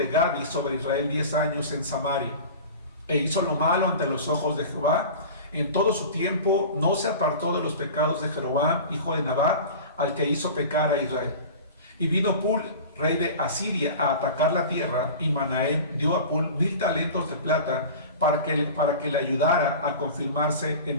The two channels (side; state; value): both; inverted; correlation -0.35